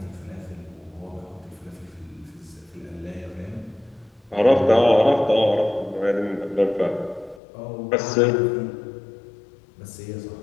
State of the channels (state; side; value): drops out; right; at 7.4 s